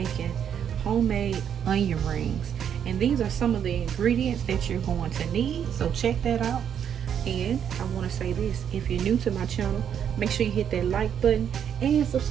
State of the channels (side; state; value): left; quieter; 8.6 dB